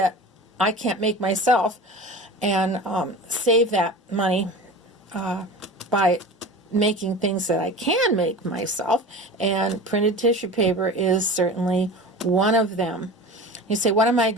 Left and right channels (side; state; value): both; normal; correlation 0.34